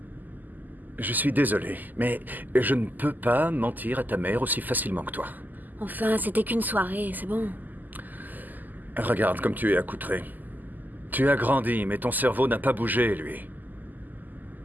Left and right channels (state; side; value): late; left; 0.085 ms